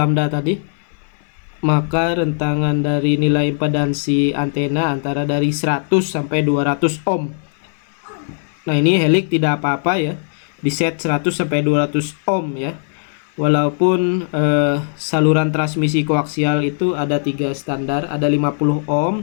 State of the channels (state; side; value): silent; right; 60 dB below the other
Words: tadi, maka rentangan dari nilai impedansi antena antara dari 100 sampai 200 ohm. Nah, ini helix tidak apa-apa ya, diset 100 sampai 200 ohm ya. Walaupun saluran transmisi koaksial itu ada 3 standar, ada 50